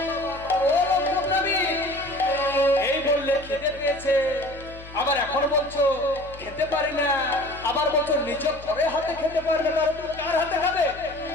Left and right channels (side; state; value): left; noise; hum, 17 dB below the sound